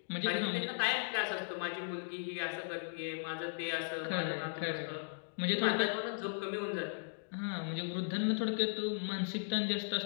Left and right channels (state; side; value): silent; right; digital silence